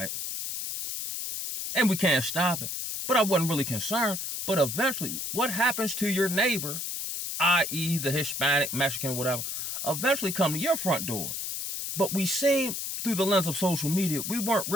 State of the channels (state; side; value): noise; left; hiss, 4 dB below the sound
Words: and we can't stop it, but I wasn't really concerned. But eventually, what happens to your neighbor, i.e. the Hispanic, Mexican, whatever, eventually come to your front door. But we seen through the lens of social media, we weren't